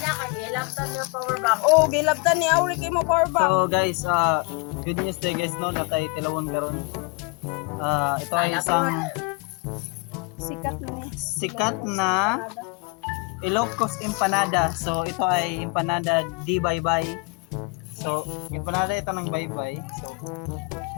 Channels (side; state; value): right; quieter; 29.6 dB